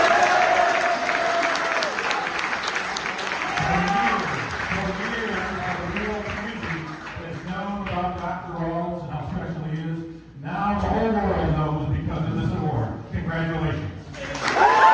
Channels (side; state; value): both; identical; correlation 1.00